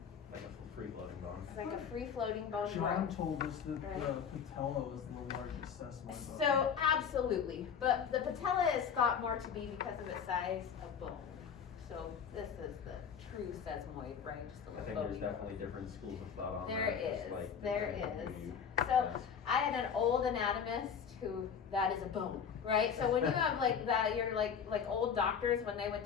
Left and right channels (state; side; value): quieter; right; 7.1 dB